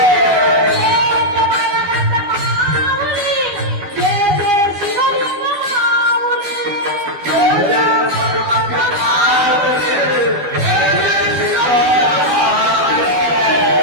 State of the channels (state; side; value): late; left; 12 ms